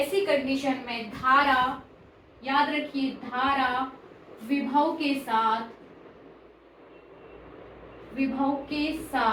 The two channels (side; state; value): both; identical; correlation 1.00